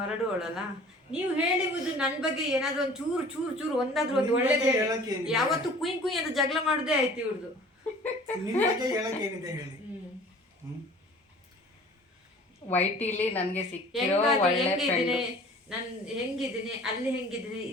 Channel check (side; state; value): both; normal; correlation 0.47